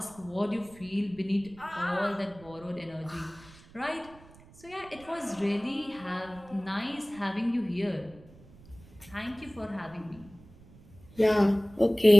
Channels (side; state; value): right; noise; rumble, 22 dB below the sound